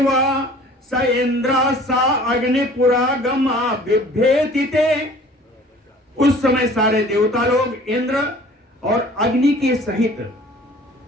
स इंद्रा सा अग्निपुरागमा बिभ्येति ते। उस समय सारे देवता लोग इंद्र और अग्नि के सहित,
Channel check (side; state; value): both; normal; correlation 0.49